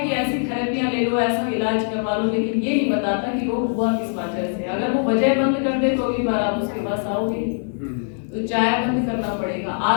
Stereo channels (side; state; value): right; silent; digital silence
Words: ऐसी थेरेपियां ले लो, ऐसा इलाज करवा लो, लेकिन ये नहीं बताता कि रोग हुआ किस वजह से। अगर वो वजह बंद कर दे तो अगली बार आप उसके पास आओगे। तो चाय बंद करना पड़ेगा।